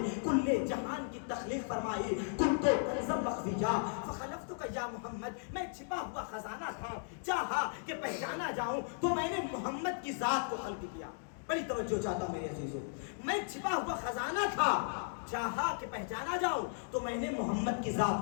کل جہان کی تخلیق فرمائی۔ کنت کنزا مخفیا فخلفتک یا محمد، میں چھپا ہوا خزانہ تھا، چاہا کہ پہچانا جاؤں تو میں نے محمد کی ذات کو خلق کیا۔ بڑی توجہ چاہتا ہوں میرے عزیزوں، میں چھپا ہوا خزانہ تھا، چاہا کہ پہچانا جاؤں تو میں نے محمد کی ذات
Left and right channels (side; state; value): right; silent; digital silence